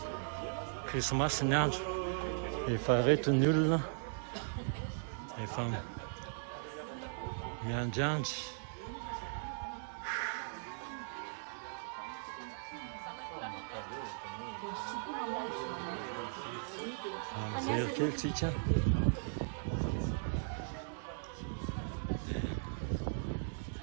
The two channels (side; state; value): left; silent; digital silence